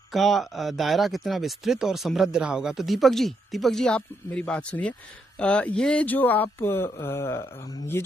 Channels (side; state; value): both; normal; correlation 0.78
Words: का दायरा कितना विस्तृत और समृद्ध रहा होगा। तो दीपक जी आप मेरी बात सुनिए। ये